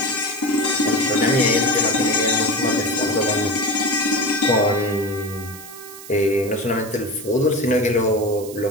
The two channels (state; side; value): noise; right; hiss, 16 dB below the sound